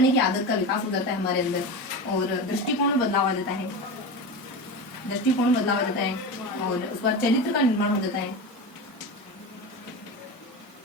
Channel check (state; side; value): normal; both; correlation 0.24